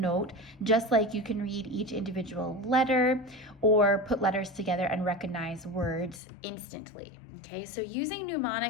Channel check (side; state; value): right; drops out; at 6.2 s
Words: just like you can read each individual letter or put letters together and recognize words instantly. Okay, so using